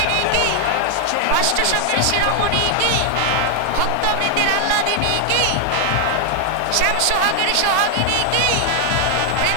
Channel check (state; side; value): different; both; correlation 0.00